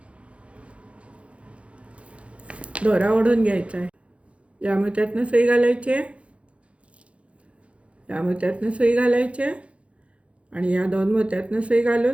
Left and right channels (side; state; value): left; late; 0.061 ms